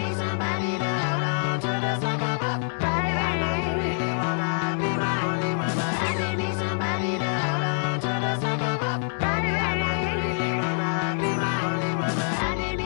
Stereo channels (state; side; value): silent; right; digital silence